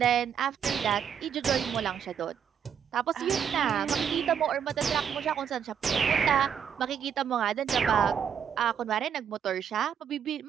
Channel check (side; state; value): left; quieter; 8.0 dB